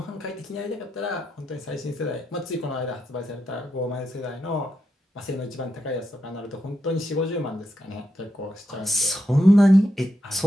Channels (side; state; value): both; normal; correlation 0.84